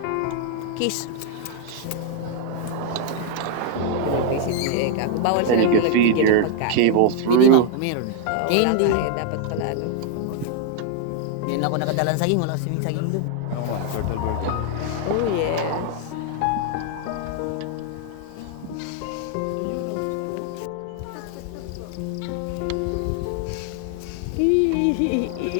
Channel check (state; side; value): different; both; correlation 0.00